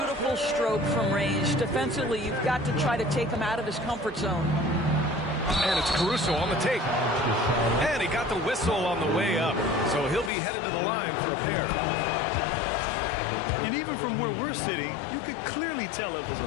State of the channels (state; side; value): drops out; right; at 10.3 s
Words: stroke from range. Defensively, you've got to try to take him out of his comfort zone. And it's Caruso on the take. And he got the whistle on the way up. So he'll be headed to the line for a pair. And even from where we're sitting, you could clearly tell it was